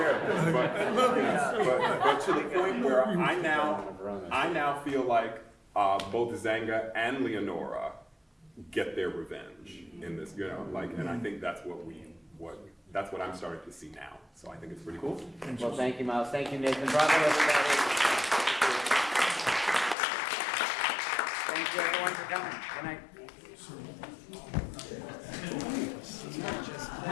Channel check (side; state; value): right; drops out; at 20.0 s